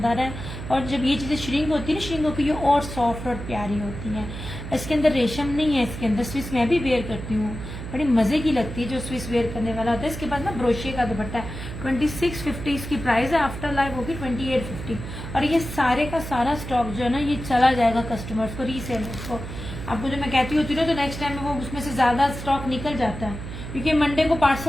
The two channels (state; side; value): noise; right; hum, 9 dB below the sound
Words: है। और जब ये चीजें श्रिंक होती है ना, श्रिंक होकर ये और सॉफ्ट और प्यारी होती हैं। इसके अंदर रेशम नहीं है, इसके अंदर स्विच मैं भी वेयर करती हूँ, बड़ी मजे की लगती है जो स्विच वेयर करने वाला होता है। इसके बाद ना ब्रोशिया का दुपट्टा है, 2650 इसकी प्राइस है। आफ्टर लाइव होगी 2850। और ये सारे का सारा स्टॉक जो है ना ये चला जाएगा कस्टमर्स को, रीसेलर्स को। आपको जो मैं कहती होती ना, तो नेक्स्ट टाइम वो उसमें से ज्यादा स्टॉक निकल जाता है, क्योंकि मंडे को